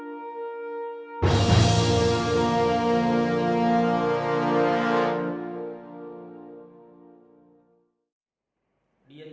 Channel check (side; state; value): both; identical; correlation 1.00